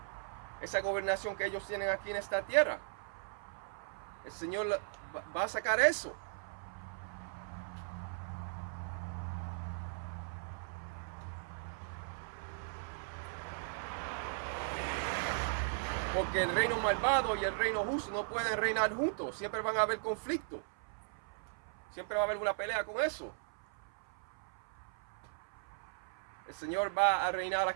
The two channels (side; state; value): left; silent; 53 dB below the other